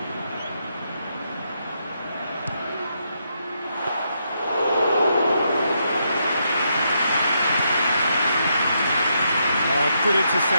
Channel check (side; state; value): both; inverted; correlation -0.79